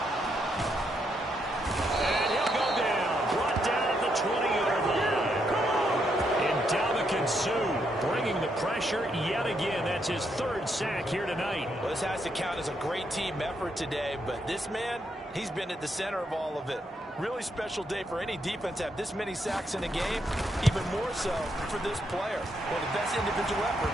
And he'll go down. Brought down at the 20-yard line. And Ndamukong Suh bringing the pressure yet again. That's his third sack here tonight. Well, this has to count as a great team effort today, but this man, he's been at the center of all of it. Really special day for any defense to have this many sacks in a game, even more so for this player. One of the best individual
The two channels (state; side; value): normal; both; correlation 0.78